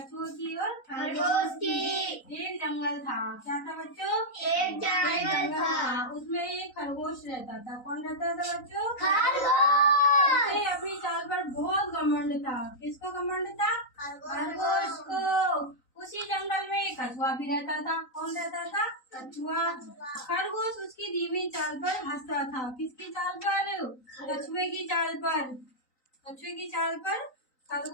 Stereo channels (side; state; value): right; late; 3.9 ms